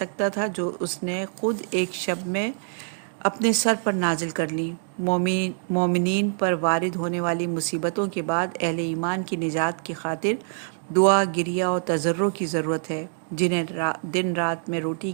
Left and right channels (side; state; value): left; silent; digital silence